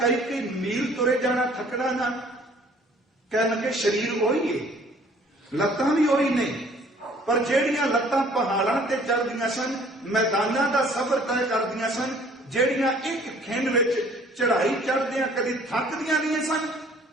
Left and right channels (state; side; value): normal; both; correlation 0.56